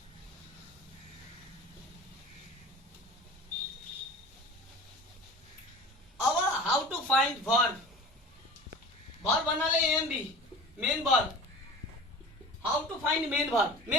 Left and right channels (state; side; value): normal; both; correlation 0.38